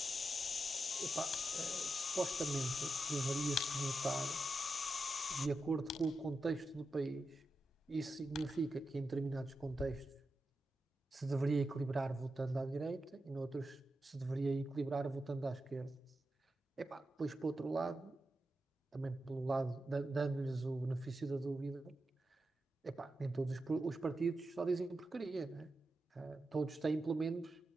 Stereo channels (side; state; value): both; normal; correlation 0.89